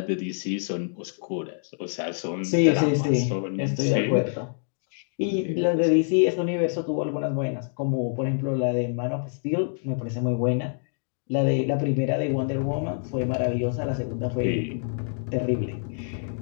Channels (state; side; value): silent; right; digital silence